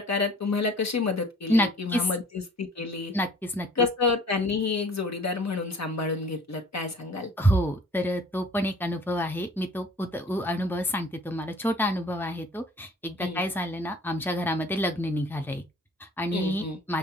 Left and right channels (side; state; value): both; normal; correlation 0.51